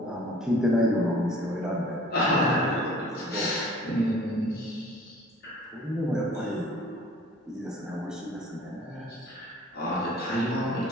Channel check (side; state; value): both; normal; correlation 0.50